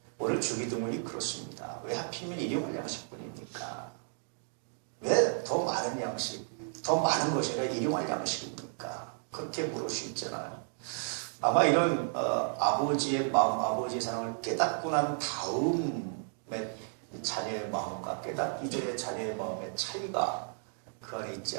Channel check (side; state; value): left; silent; 56 dB below the other